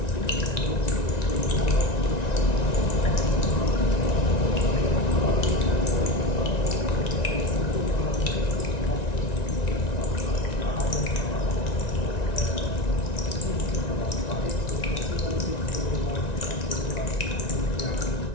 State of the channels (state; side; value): late; right; 1.9 ms